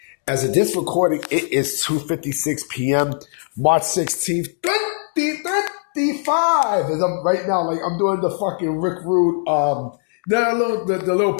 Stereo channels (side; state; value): right; silent; 65 dB below the other